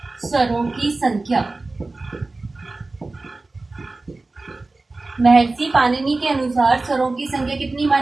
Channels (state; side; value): quieter; left; 3.3 dB